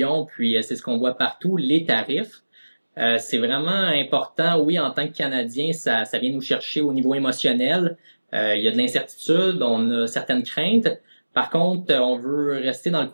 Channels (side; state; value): both; inverted; correlation -1.00